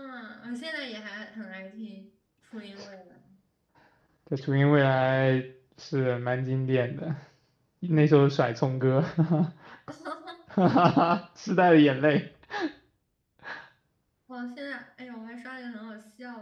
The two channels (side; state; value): both; identical; correlation 1.00